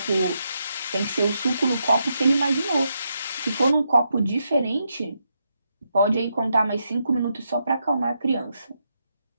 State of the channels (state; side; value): inverted; both; correlation -0.82